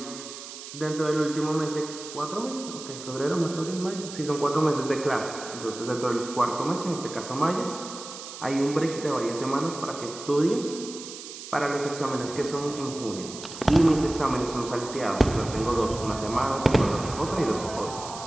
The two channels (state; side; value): noise; right; hiss, 12 dB below the sound